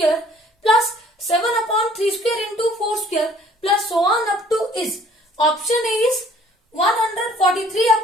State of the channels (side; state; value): both; normal; correlation 0.56